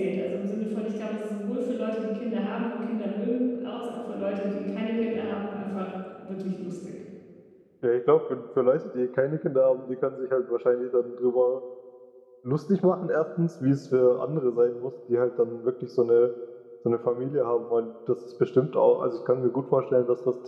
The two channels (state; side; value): identical; both; correlation 1.00